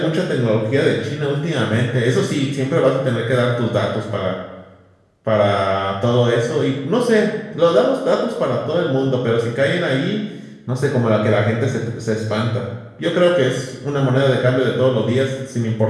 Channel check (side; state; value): both; identical; correlation 1.00